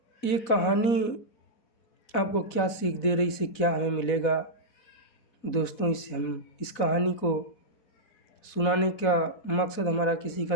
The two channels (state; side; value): late; right; 4.1 ms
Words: ये कहानी आपको क्या सीख दे रही, इससे क्या हमें मिलेगा दोस्तों? इससे हम इस कहानी को सुनाने का मकसद हमारा किसी का